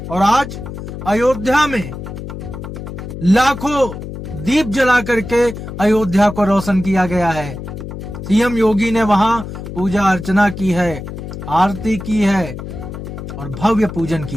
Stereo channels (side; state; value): left; noise; hum, 9 dB below the sound